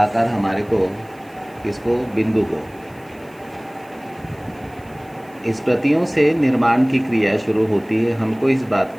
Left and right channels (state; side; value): noise; right; hiss, 29 dB below the sound